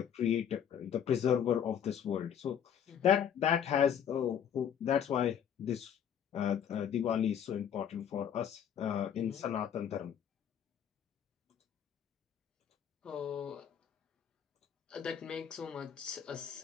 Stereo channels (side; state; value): right; quieter; 8.7 dB